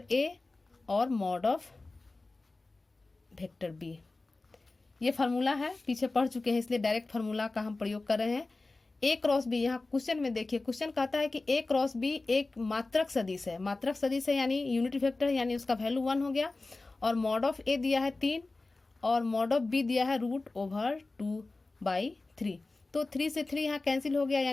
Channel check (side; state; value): right; quieter; 3.3 dB